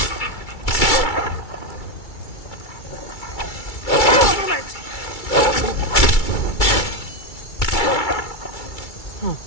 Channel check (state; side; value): late; right; 2.3 ms